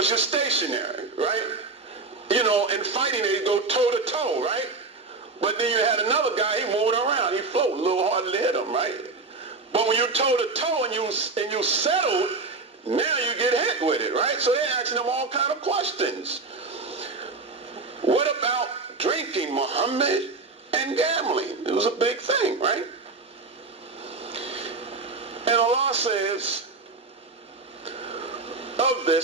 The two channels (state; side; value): quieter; left; 3.8 dB